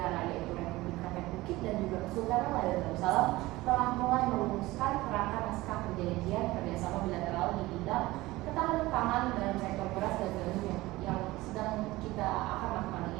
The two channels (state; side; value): quieter; left; 19.1 dB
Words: yaitu Republik Rakyat Bukit dan juga Kesultanan Melayu Darussalam telah mulai merumuskan kerangka naskah perjanjian kerjasama bilateral di bidang ketahanan pangan dalam sektor beras dan gandum yang sedang kita akan lakukan